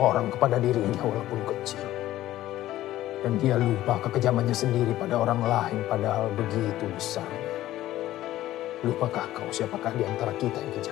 orang kepada dirinya walaupun kecil. Dan dia lupa kekejamannya sendiri pada orang lain padahal begitu besar. Lupakah kau siapakah di antara kita yang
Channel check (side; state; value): right; quieter; 14.5 dB